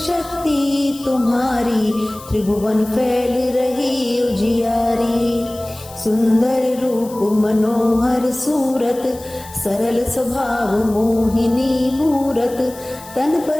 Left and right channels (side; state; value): left; noise; hiss, 19 dB below the sound